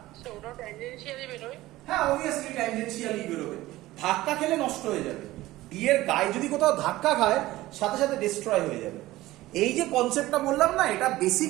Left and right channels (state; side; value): quieter; left; 17.1 dB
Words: আচ্ছা ওটা ট্যানজেনশিয়ালি বেরোয়। হ্যাঁ অবভিয়াসলি ট্যানজেনশিয়ালি বেরোবে, ধাক্কা খেলে নষ্ট হয়ে যাবে। ডি এর গায়ে যদি কোথাও ধাক্কা খায় সাথে সাথে ডিস্ট্রয় হয়ে যাবে। এই যে কনসেপ্টটা বললাম না, এটা